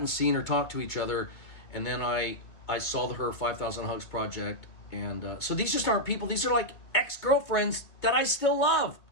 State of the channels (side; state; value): right; late; 2.2 ms